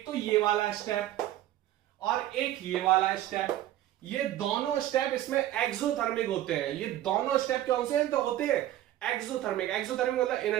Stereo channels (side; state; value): left; quieter; 13.4 dB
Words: तो ये वाला स्टेप और एक ये वाला स्टेप, ये दोनों स्टेप इसमें एक्सोथर्मिक होते हैं। ये दोनों स्टेप कौन से हैं, तो होते हैं एक्सोथर्मिक मतलब